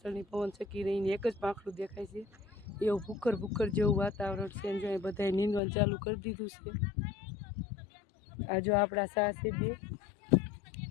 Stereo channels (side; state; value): right; drops out; at 5.6 s